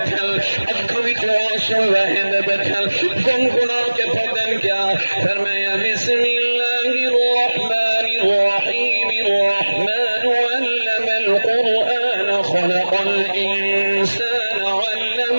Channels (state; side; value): inverted; both; correlation -1.00